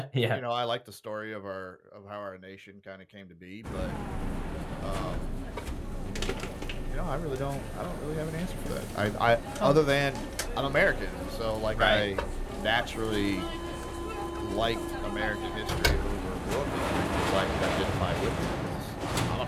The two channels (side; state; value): both; identical; correlation 1.00